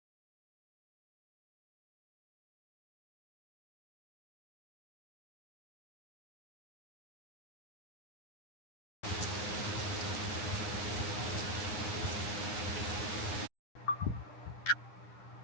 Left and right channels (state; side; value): late; right; 9.7 ms